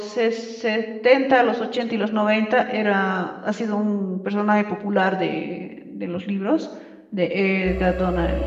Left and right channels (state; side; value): identical; both; correlation 1.00